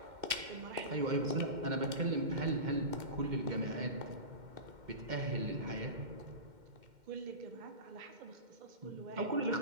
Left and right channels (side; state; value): left; late; 2.1 ms